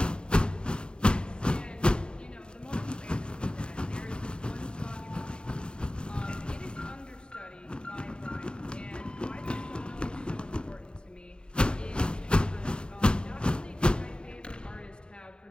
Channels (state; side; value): late; right; 0.050 ms